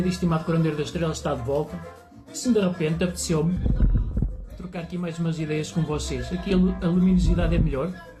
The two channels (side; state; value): both; identical; correlation 1.00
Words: e estimado curandeiro das estrelas está de volta. Se de repente apeteceu-me trocar aqui mais umas ideias com vocês. Aqui a luminosidade é melhor.